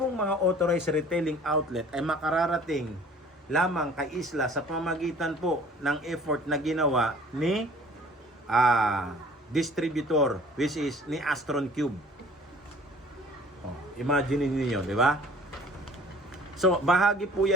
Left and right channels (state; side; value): normal; both; correlation 0.50